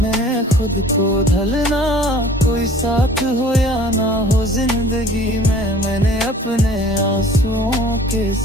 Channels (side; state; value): both; normal; correlation 0.49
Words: में खुद को ढलना। कोई साथ हो या ना हो जिंदगी में, मैंने अपने आंसुओं के